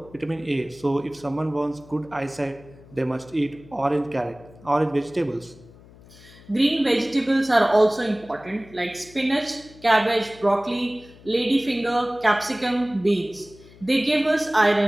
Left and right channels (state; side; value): noise; left; hum, 23 dB below the sound